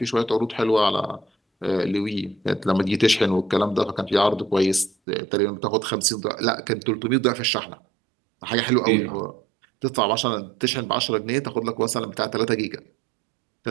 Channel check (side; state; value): left; drops out; at 5.0 s